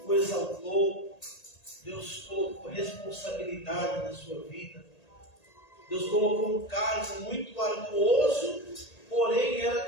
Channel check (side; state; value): right; late; 1.8 ms